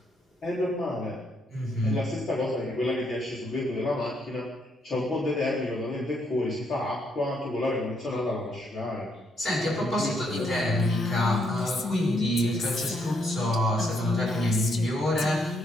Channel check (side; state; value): both; normal; correlation 0.74